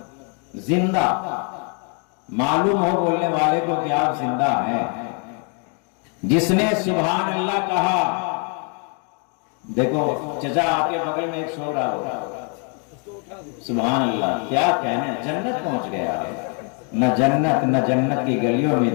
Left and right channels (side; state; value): right; quieter; 39.2 dB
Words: زندہ، معلوم ہو بولنے والے کو کہ آپ زندہ ہیں۔ جس نے سبحان اللہ کہا، دیکھو چچا آپ کے بغل میں ایک سو رہا ہوگا، سبحان اللہ، کیا کہنے، جنت پہنچ گیا ہے۔ نہ جنت کی گلیوں میں